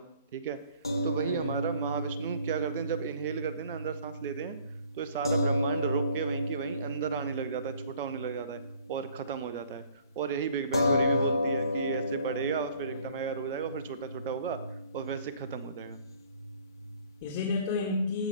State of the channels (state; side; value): inverted; both; correlation -0.56